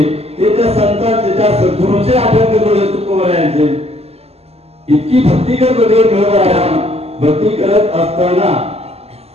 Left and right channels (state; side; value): late; left; 0.29 ms